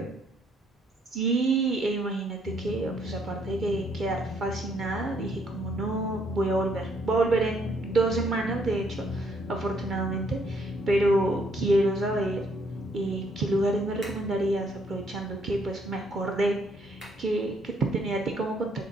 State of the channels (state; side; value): normal; both; correlation 0.69